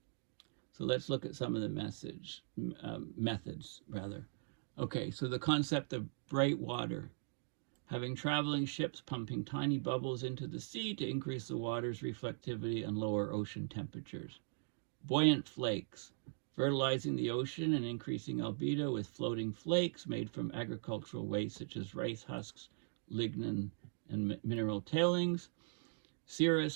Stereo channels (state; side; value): silent; left; digital silence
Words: So let's look at some of the methods, rather. Okay, so the concept of bright water. Having traveling ships pumping tiny bubbles into the sea to increase the water's reflectivity and lower ocean temperatures. Buoyant flakes. Fertilizing the ocean and increasing albedo with floating flakes made from agricultural waste such as rice husks, lignin, and mineral tailings.